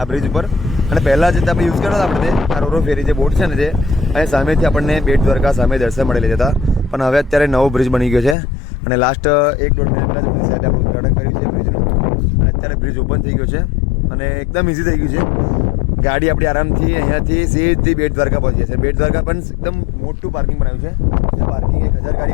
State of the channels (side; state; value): right; drops out; at 8.3 s